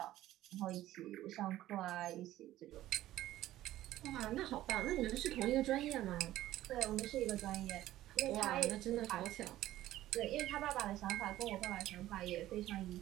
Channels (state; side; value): quieter; left; 14.5 dB